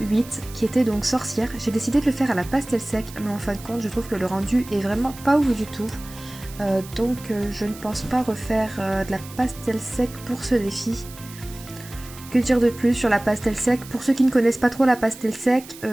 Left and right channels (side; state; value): right; noise; hiss, 17 dB below the sound